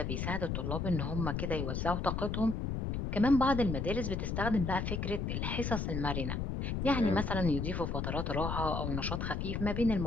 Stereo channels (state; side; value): noise; left; rumble, 2 dB below the sound